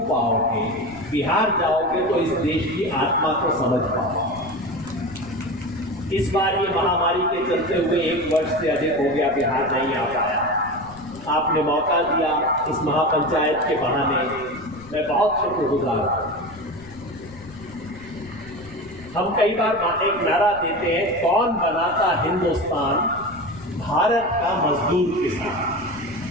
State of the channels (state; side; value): noise; left; rumble, 19 dB below the sound